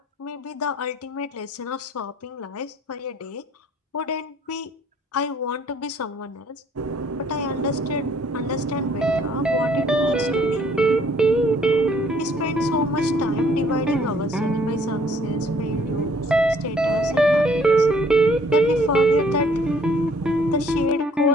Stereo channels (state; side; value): normal; both; correlation 0.60